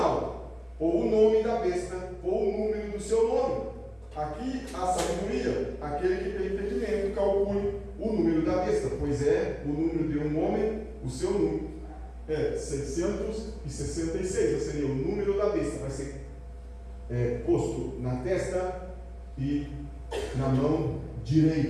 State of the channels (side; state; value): both; identical; correlation 1.00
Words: ou o nome da besta, ou o número do seu nome. Aqui a sabedoria, aquele que tem entendimento, calcule o número da besta, pois é o número de um homem, o seu número é 666, ou seja, o número da besta vai ser posto na testa e na mão